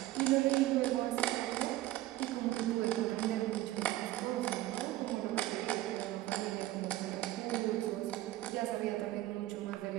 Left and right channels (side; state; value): left; quieter; 15.7 dB